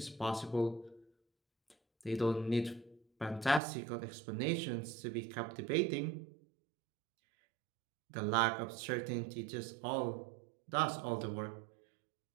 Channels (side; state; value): left; drops out; at 3.6 s